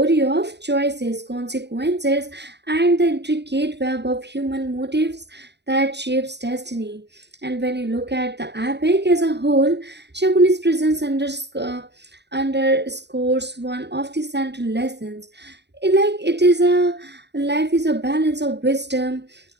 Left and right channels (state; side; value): late; left; 0.50 ms